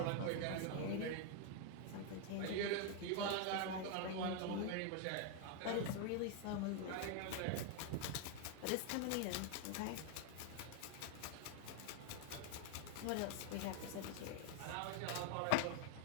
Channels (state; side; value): different; both; correlation 0.00